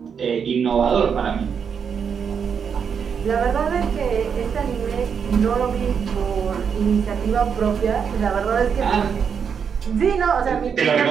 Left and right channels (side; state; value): left; quieter; 6.9 dB